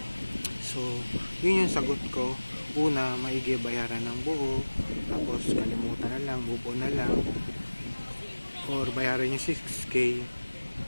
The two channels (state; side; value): inverted; both; correlation -1.00